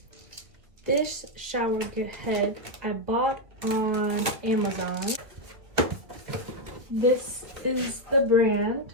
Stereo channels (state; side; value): late; left; 2.2 ms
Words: this shower head I bought on Amazon. This is the brand,